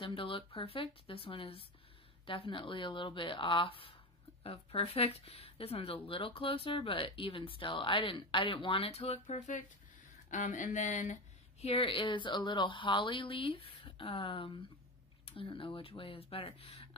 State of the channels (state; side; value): normal; both; correlation 0.21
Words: to look perfect. This one is definitely a little bit off of perfect. This one's a little closer, but even still, I didn't want it to look perfect. And then here is a little holly leaf. I don't know which way is better.